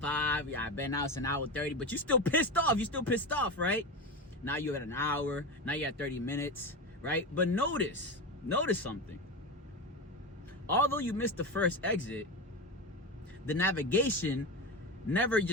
Yeah, I bet now it's an hour 30, but you're still pissed off, right? Now you're at an hour. Now you're at 30 minutes, right? But notice something. Although you missed the first exit, the navigation never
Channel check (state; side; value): normal; both; correlation 0.20